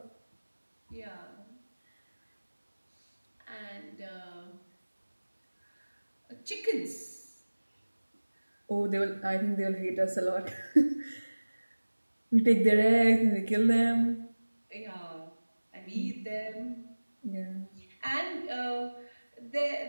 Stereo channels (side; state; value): both; inverted; correlation -1.00